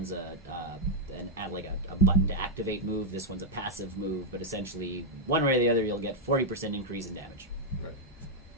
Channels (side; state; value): both; normal; correlation -0.04